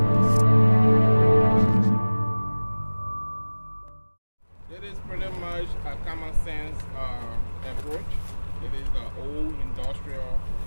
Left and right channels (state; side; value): inverted; both; correlation -1.00